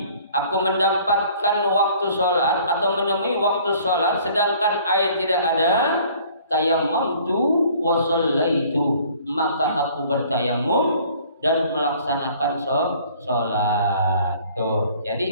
aku mendapatkan waktu salat atau menemui waktu salat sedangkan air tidak ada, tayammamtu wa shallaitu, maka aku bertayammum dan melaksanakan salat. Tuh.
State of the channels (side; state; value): both; inverted; correlation -0.54